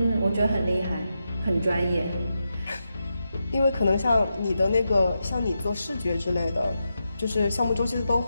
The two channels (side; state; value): both; inverted; correlation -0.87